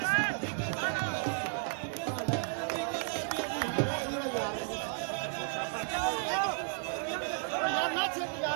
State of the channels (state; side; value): silent; left; 56 dB below the other